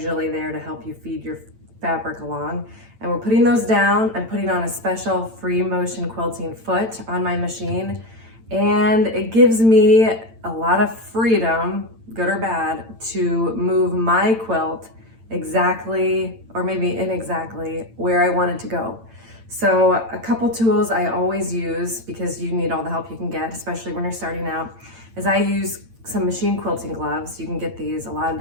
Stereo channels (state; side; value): late; left; 8.9 ms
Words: there to help you feed your fabric along. And we're putting those down. I'm putting on a special free motion quilting foot on my machine. And it gives me a lot of freedom, good or bad, to move my quilt exactly, or maybe inexactly, where I want it to go. So a couple tools I always use, because you need all the help you can get, especially when you're starting out, is I use some machine quilting gloves. You can get these a lot of